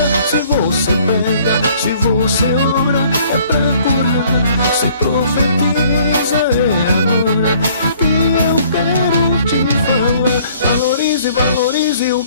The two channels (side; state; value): both; inverted; correlation -0.58